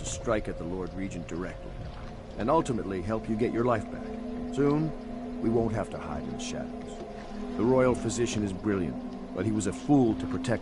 strike at the Lord Regent directly, and ultimately help you get your life back. Soon, we won't have to hide in the shadows. The royal physician is brilliant, but he was a fool to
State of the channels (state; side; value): identical; both; correlation 1.00